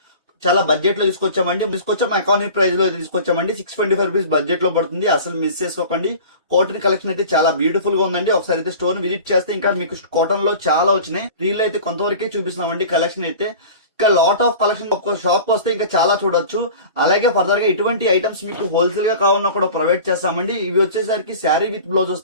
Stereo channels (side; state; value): both; inverted; correlation -0.40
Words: చాలా బడ్జెట్ లో తీసుకొచ్చాం ఎకానమీ ప్రైస్ లో తీసుకొచ్చామండి. 625 రూపీస్ బడ్జెట్ లో పడుతుంది. అసలు మిస్ చేసుకోకండి. కాటన్ కలెక్షన్ అయితే చాలా బ్యూటిఫుల్ గా ఉందండి. ఒకసారి అయితే స్టోర్ విజిట్ చేస్తే ఇంకా మీకు కాటన్ లో చాలా వచ్చినాయి. రీల్ అయితే కొంతవరకే చూపిస్తున్నామండి. కలెక్షన్ అయితే ఇంకా లాట్ ఆఫ్ కలెక్షన్ ఒక్క షాప్ వస్తే ఇంకా చాలా చూడొచ్చు. అలాగే ఫర్దర్ గా ఇటువంటి ఐటమ్స్ మీకు హోల్సేల్ గా కావాలన్నా కూడా ప్రొవైడ్ చేస్తామండి. ఇవి వచ్చేసరికి శారీ విత్ బ్లౌజ్